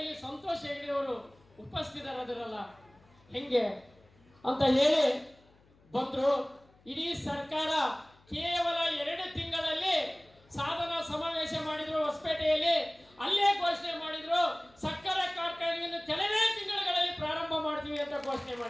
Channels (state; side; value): noise; left; hum, 30 dB below the sound